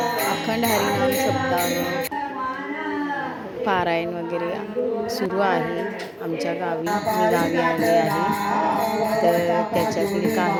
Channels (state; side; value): identical; both; correlation 1.00